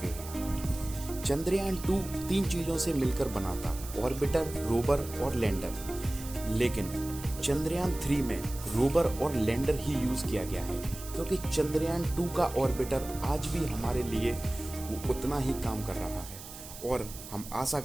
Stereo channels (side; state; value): right; noise; hiss, 13 dB below the sound